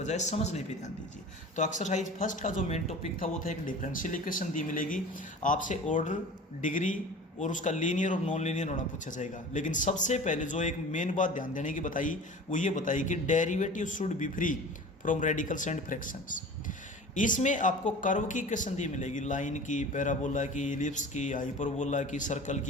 समझने पे ध्यान दीजिए। तो एक्सरसाइज फर्स्ट का जो मेन टॉपिक था वो था एक डिफरेंशियल इक्वेशन दी मिलेगी, आपसे ऑर्डर, डिग्री और उसका लीनियर और नॉन लीनियर होना पूछा जाएगा। लेकिन सबसे पहले जो एक मेन बात ध्यान देने की बताई वो ये बताई कि derivative should be free from radicals and fractions. इसमें आपको कर्व की इक्वेशन दी मिलेगी, लाइन की, पैराबोला की, इलिप्स की, हाइपरबोला की, सर्कल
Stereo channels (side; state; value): both; normal; correlation 0.39